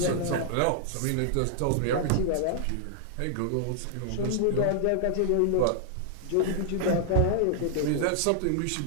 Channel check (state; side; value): different; both; correlation -0.01